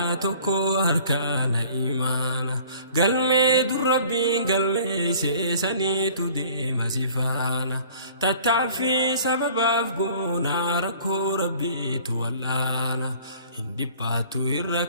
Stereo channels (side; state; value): both; inverted; correlation -0.50